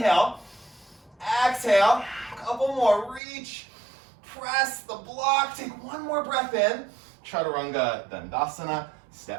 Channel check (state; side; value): drops out; left; at 3.2 s